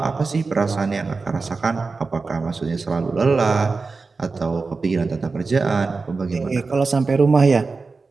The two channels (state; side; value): quieter; left; 4.2 dB